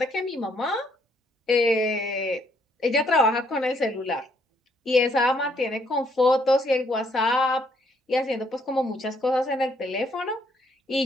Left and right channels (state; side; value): normal; both; correlation 0.69